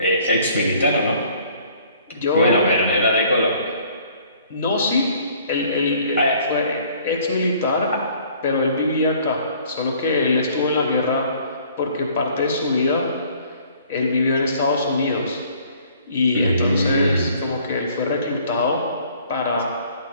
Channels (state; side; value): inverted; both; correlation -0.57